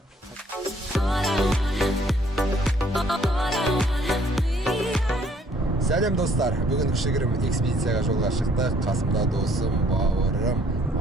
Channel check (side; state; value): both; normal; correlation 0.62